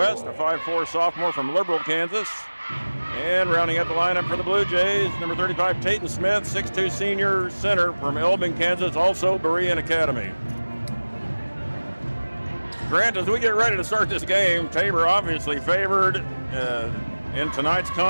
a 5'4", sophomore from Liberal, Kansas. And rounding out the lineup for the Blue Jays, number 35, Tayton Smith, 6'2", senior center from Elbing, Kansas, also Berean Academy. Grant, as we get ready to start this game, Tabor obviously favored in tonight's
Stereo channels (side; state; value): both; inverted; correlation -1.00